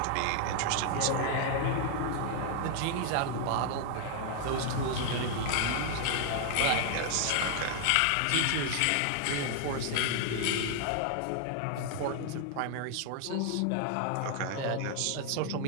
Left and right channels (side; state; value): both; different; correlation 0.00